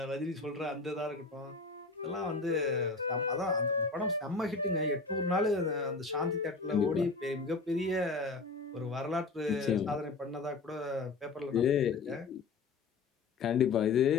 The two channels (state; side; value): quieter; right; 4.1 dB